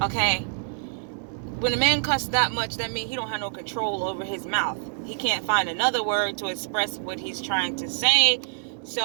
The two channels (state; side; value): silent; left; digital silence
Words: Okay, when a man cusses that much, that means he don't have no control over his mouth. He can't find another word to express what he's trying to say.